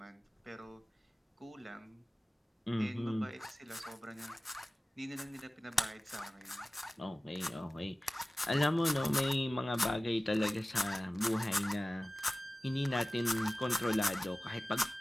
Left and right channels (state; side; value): normal; both; correlation 0.97